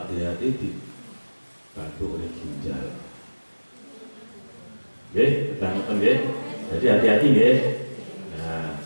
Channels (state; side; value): inverted; both; correlation -1.00